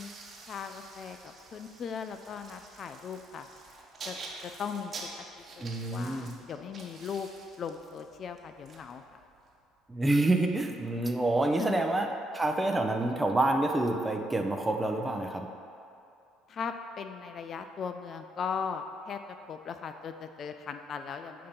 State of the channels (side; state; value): both; normal; correlation 0.81